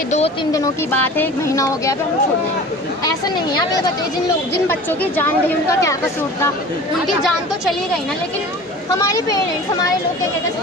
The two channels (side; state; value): both; normal; correlation 0.39